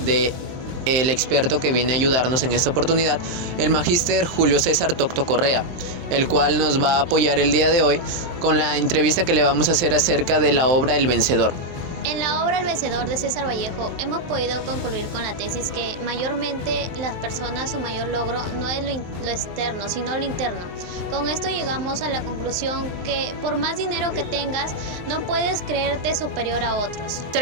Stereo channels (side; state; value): left; late; 23 ms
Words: de el experto que viene a ayudarnos en esta oportunidad, el magíster Julio César Tocto Correa, el cual nos va a apoyar el día de hoy con la entrevista que le vamos a hacer acerca de la obra El Vencedor. En la obra El Vencedor de César Vallejo hemos podido concluir con la tesis que mayormente las personas, su mayor logro no es lo externo, sino lo interno. Con esto llegamos a la conclusión que por más dinero que tengas, no puedes creerte superior a otros. Esto